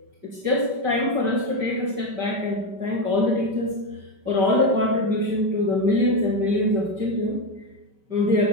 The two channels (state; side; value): late; left; 5.2 ms